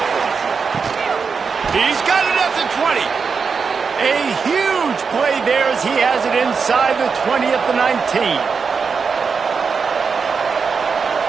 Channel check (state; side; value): quieter; left; 5.5 dB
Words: He's got it at the 20. A huge play there as he has it inside the 20 at the 19.